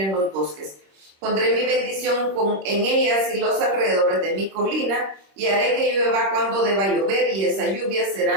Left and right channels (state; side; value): late; left; 26 ms